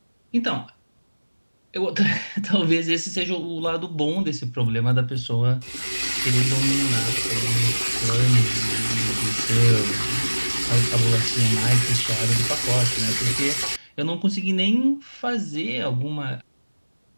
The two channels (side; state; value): both; inverted; correlation -1.00